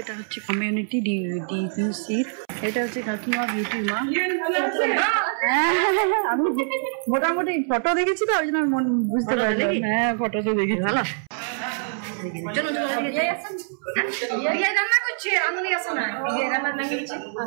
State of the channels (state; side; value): silent; left; 62 dB below the other